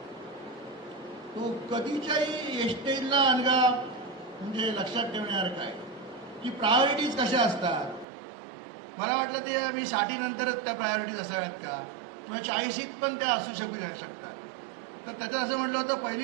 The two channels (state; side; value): drops out; left; at 8.1 s